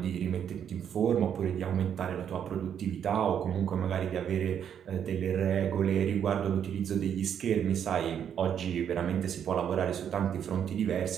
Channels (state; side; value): quieter; left; 8.7 dB